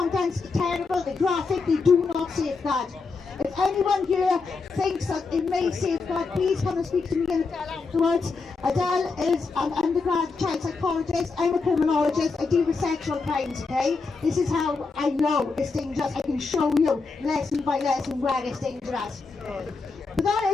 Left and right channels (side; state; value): right; quieter; 4.4 dB